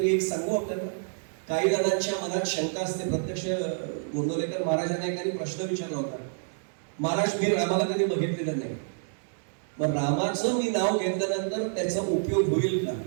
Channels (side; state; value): left; silent; digital silence